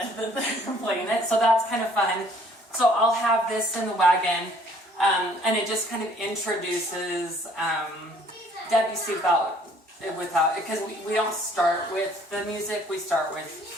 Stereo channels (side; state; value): both; normal; correlation 0.59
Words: that they're playing it. So that's kind of fun. So I'll have this in the wagon, and it just kind of introduces Debussy without, because we don't start with the music, we start